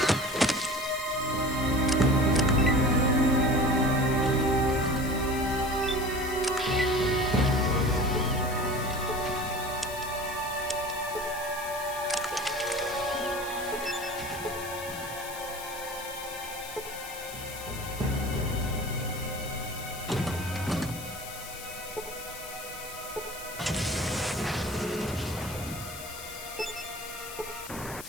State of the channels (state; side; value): noise; left; hiss, 12 dB below the sound